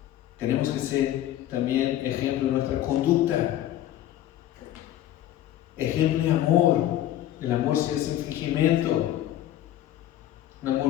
Tenemos que ser también ejemplo de nuestra conducta. Ejemplo de amor. El amor sin fingimiento. Un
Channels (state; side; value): quieter; right; 12.7 dB